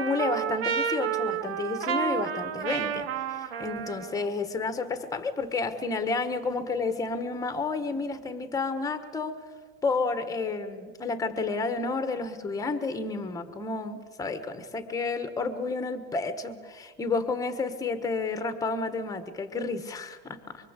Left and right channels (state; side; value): normal; both; correlation 0.40